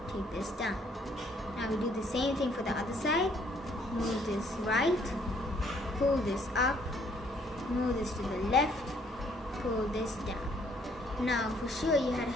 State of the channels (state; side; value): normal; both; correlation 0.64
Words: take this down. Now we do the same thing for the other side. Move this right, pull this up, move this to the left, pull this down. Now for sure you had